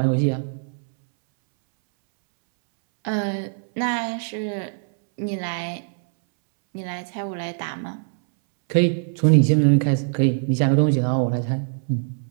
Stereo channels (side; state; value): left; silent; 64 dB below the other